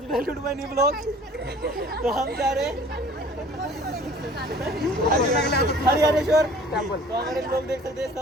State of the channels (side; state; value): both; normal; correlation 0.50